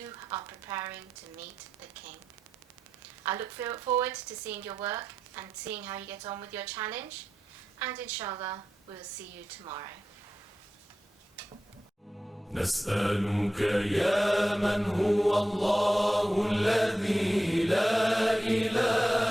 are preparing to meet the king. I look forward to seeing your work and seeing how you get on with your challenge. And inshallah, we'll see you tomorrow. نسألك يا من هو الله الذي لا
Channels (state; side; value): normal; both; correlation 0.90